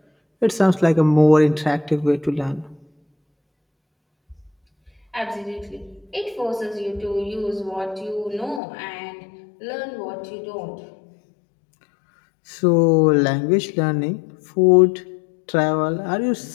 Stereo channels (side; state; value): right; drops out; at 8.6 s